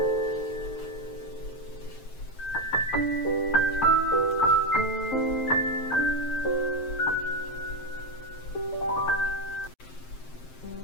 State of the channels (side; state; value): right; late; 7.6 ms